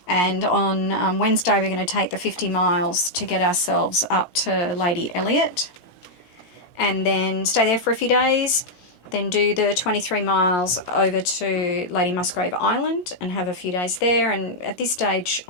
And on Wednesday, we're going to take the 50 miles to get ourselves up to Lady Elliot, and then stay there for a few days, then do the 23 miles over to Lady Musgrave Island and have a few days there. And at this stage,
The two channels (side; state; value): right; late; 17 ms